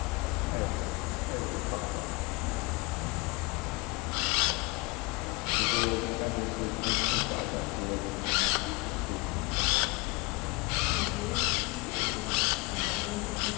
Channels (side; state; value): right; quieter; 26.3 dB